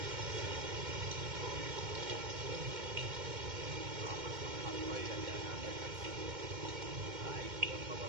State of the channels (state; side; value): late; left; 2.2 ms